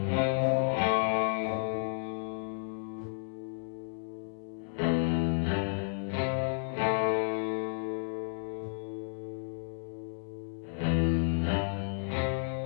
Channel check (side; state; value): right; silent; 56 dB below the other